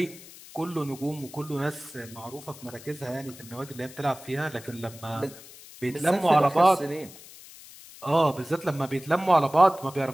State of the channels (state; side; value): noise; left; hiss, 18 dB below the sound